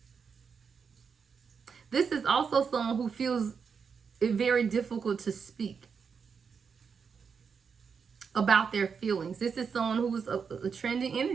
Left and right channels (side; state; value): left; quieter; 6.1 dB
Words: This is also someone who feels it very difficult to speak about their feelings. This is someone who's a trending